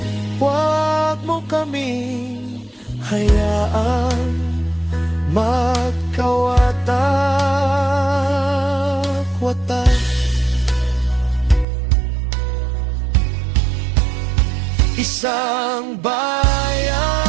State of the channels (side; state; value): left; drops out; at 11.7 s